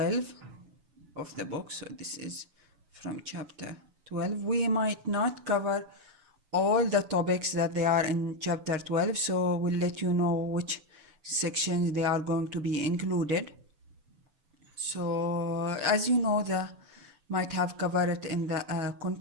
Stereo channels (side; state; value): left; late; 6.9 ms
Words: of the book. So this is from chapter 12. We might not cover all the topics that they are in chapter 12, so we'll let you know which sections they are going to be included. So as you know, the might have covered it in the